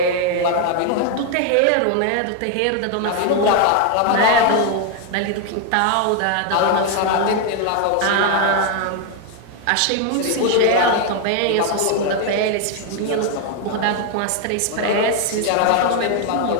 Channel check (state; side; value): different; both; correlation 0.01